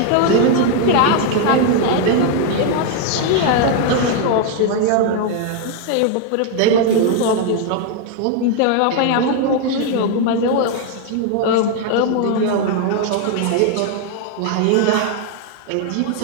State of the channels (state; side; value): different; both; correlation 0.00